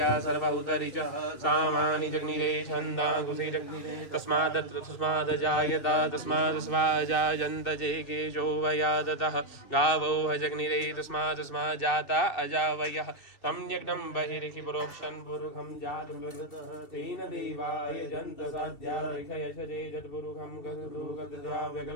सर्वभूतरिच सामानि जग्निरे छन्दांकुशे जग्निरे तस्मादजायता तस्मादस्वाजायन्त जे केशो वयादतः गावो हजग्निरे तस्मादस्माज्जाता अजावयः तं यज्ञं बहिरिहि प्रोक्षन् पुरुखं जातं तेन देवाय जन्त साध्या ऋषयशजे जत्पुरुखं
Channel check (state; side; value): late; right; 2.6 ms